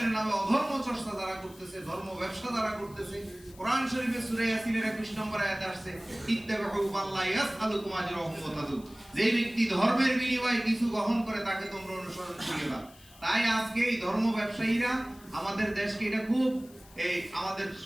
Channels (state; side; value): noise; left; hiss, 24 dB below the sound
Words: নামে অধর্ম চর্চা যারা করতেছে, ধর্ম ব্যবসা যারা করতেছে, কোরআন শরীফে সূরা ইয়াসিনের 21 নম্বর আয়াতে আসছে, ইত্তাবিউ মাল্লা ইয়াসআলুকুম আজরাহুম ওয়া তাদুন, যে ব্যক্তি ধর্মের বিনিময়ে কিছু গ্রহণ করে তাকে তোমরা অনুসরণ করিবা। তাই আজকে এই ধর্ম ব্যবসায়ীরা আমাদের দেশকে এটা খুব এই আমাদের